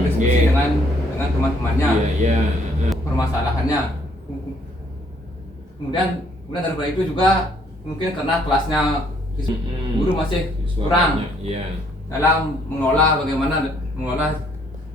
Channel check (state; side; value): normal; both; correlation 0.66